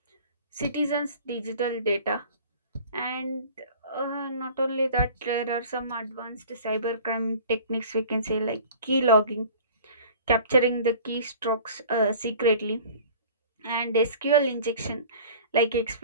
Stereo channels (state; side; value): inverted; both; correlation -0.45